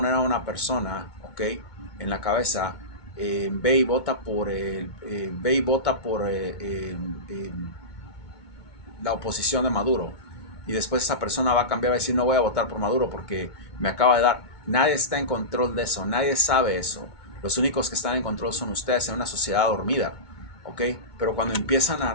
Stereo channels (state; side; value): late; right; 2.2 ms